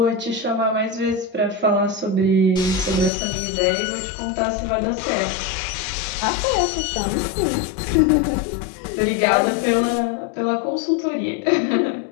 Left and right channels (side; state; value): right; drops out; at 3.1 s